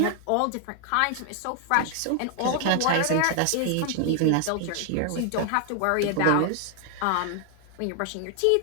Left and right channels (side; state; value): both; different; correlation 0.00